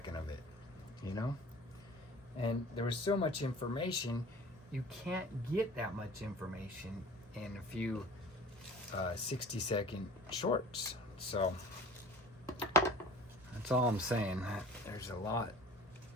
of it, you know? And there was so much information. You can't get that much information in a few 60-second shorts. So that's all I'm saying. There's a lot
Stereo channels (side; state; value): both; normal; correlation 0.45